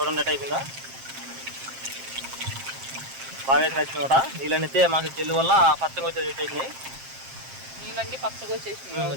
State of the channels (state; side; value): late; left; 7.5 ms